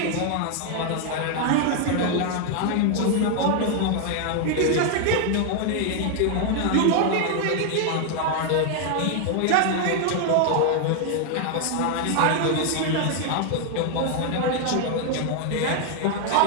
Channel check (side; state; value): both; different; correlation 0.00